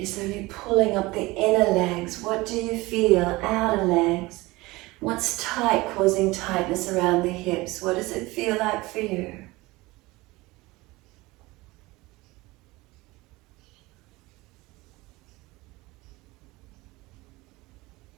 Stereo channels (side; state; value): left; quieter; 21.3 dB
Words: there any pulling up the inner legs? What do you feel? Outer legs. What's tight, causing tightness around the hips? What does it feel like for you?